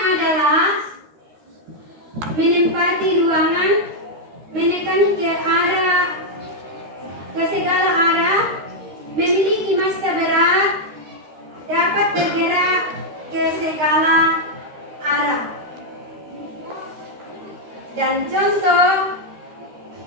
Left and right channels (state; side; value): late; left; 13 ms